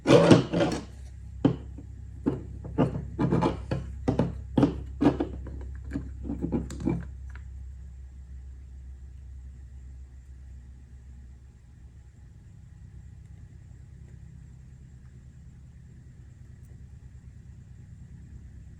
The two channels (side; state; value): both; identical; correlation 1.00